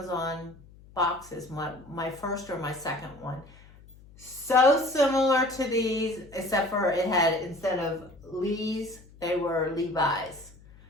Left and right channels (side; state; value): left; noise; hum, 23 dB below the sound